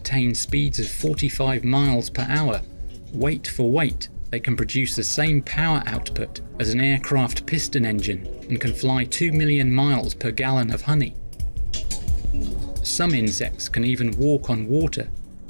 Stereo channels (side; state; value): both; inverted; correlation -1.00